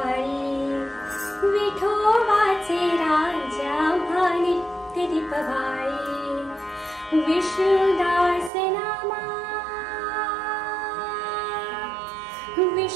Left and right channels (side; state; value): left; drops out; at 8.5 s